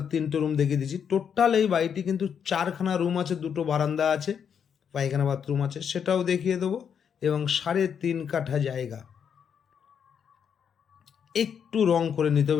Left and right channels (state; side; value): quieter; right; 7.6 dB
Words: 3টে রুম দেখিয়ে দিচ্ছি। টোটাল এই বাড়িটি কিন্তু 4খানা রুম আছে, 2টো বারান্দা আছে, পায়খানা বাথরুম আছে, সেটাও দেখিয়ে দেবো। এবং 3.5 কাঠা জায়গা, একটু রং করে নিতে